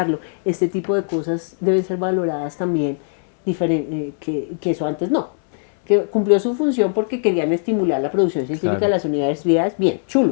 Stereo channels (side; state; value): right; silent; 66 dB below the other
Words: Este tipo de cosas deben ser valoradas también, que eso antes no. Que cumplió su función porque querían estimular la producción científica de las universidades. Bien,